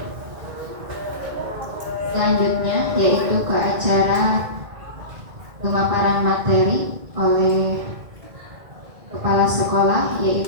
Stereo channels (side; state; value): left; late; 2.1 ms